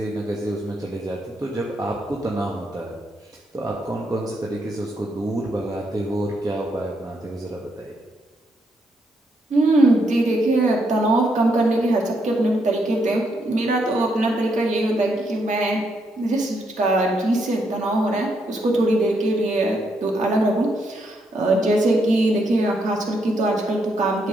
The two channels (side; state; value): both; normal; correlation 0.77